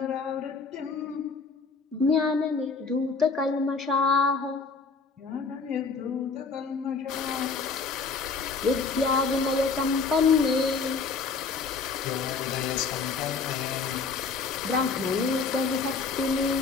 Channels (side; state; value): right; quieter; 4.7 dB